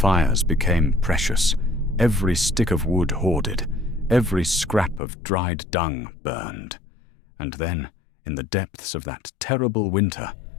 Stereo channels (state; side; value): drops out; right; at 5.0 s